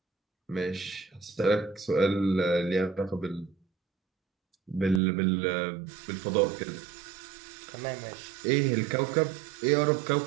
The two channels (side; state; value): left; drops out; at 5.0 s